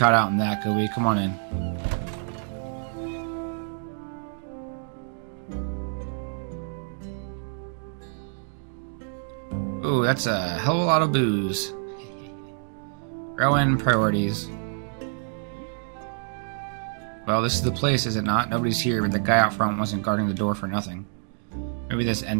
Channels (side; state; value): left; silent; 60 dB below the other